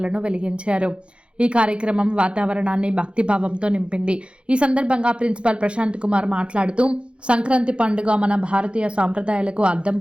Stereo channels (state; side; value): late; left; 0.058 ms